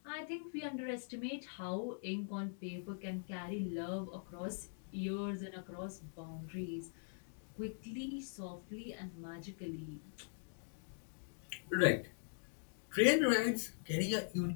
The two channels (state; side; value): silent; right; digital silence